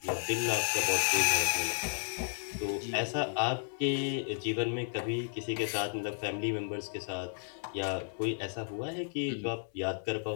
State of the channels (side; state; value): right; silent; 56 dB below the other